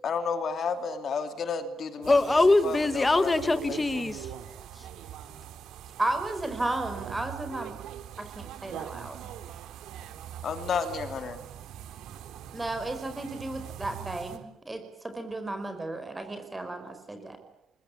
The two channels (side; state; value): both; normal; correlation 0.89